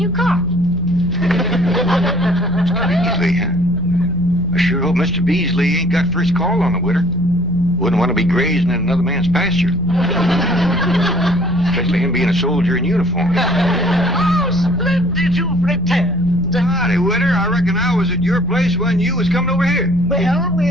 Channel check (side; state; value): left; noise; rumble, 11 dB below the sound